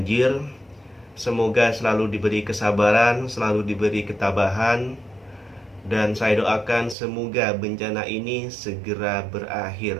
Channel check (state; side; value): drops out; left; at 7.0 s